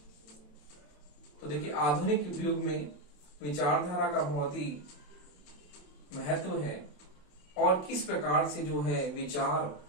तो देखिए आधुनिक युग में विचारधारा का बहुत ही महत्व है और किस प्रकार से जो है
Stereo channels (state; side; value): late; right; 28 ms